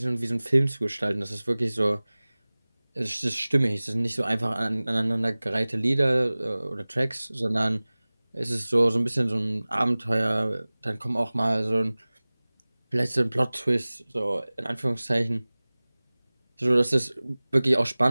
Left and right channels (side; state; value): both; inverted; correlation -0.99